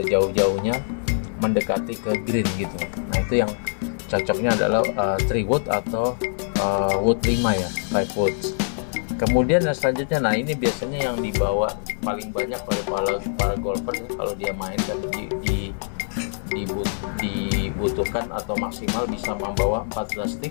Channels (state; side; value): silent; right; 55 dB below the other